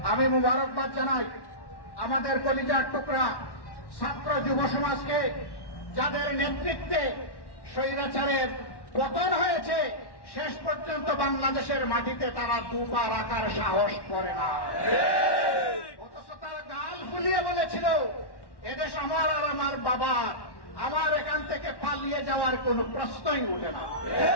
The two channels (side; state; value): right; late; 1.1 ms